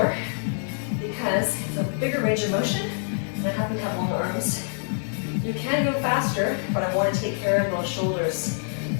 because it's a bigger range of motion, and I happen to have long arms. You can go faster, but I want to take care of those shoulders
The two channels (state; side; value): silent; right; 61 dB below the other